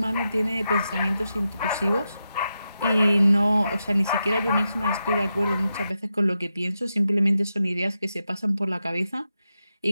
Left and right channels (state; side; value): inverted; both; correlation -0.88